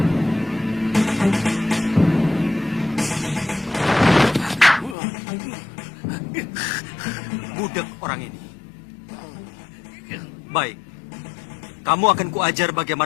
Budek orang ini. Baik, kamu akan kuajar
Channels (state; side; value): drops out; right; at 5.0 s